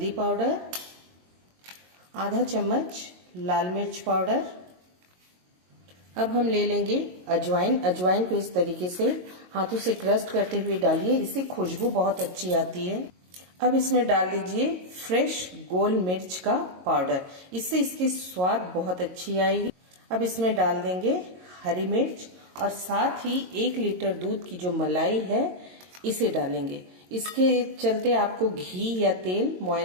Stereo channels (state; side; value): late; left; 22 ms